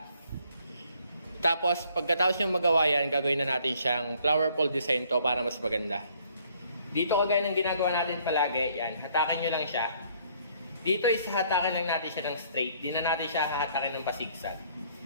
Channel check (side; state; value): both; inverted; correlation -0.62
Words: Tapos, pagkatapos yung magawa yan, gagawin na natin siyang flower pole design to para mas maganda. Dito kagaya ng ginagawa natin palagi, yan, hatakin nyo lang siya. Dito is hatakin lang natin siya ng straight, di na natin siya hahatakin ng pasigsag.